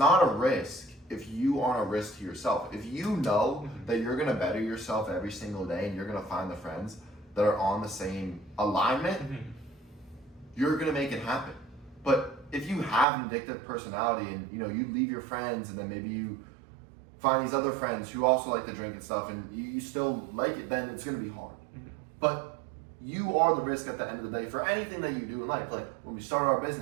a risk if you aren't a risk to yourself. If you know that you're going to better yourself every single day and you're going to find the friends that are on the same alignment, you're going to make it happen. But if you have an addictive personality and, you know, you leave your friends and then maybe you find these other friends who also like to drink and stuff and you still like it, then it's going to be hard. But you are the risk at the end of the day for anything that you do in life. Like, when we started our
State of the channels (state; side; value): drops out; left; at 13.1 s